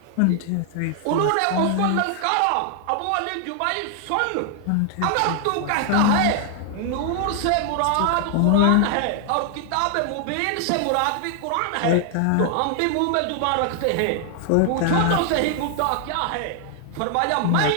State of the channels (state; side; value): different; both; correlation 0.00